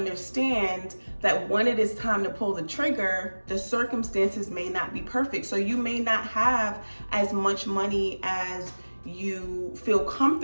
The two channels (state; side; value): inverted; both; correlation -1.00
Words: that when it is time to pull the trigger, the circumstances may not be perfect. So you may not have as much money as you feel